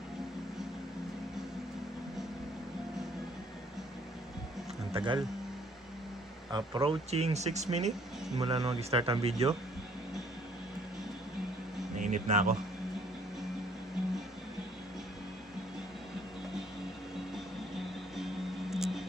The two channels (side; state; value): both; normal; correlation 0.61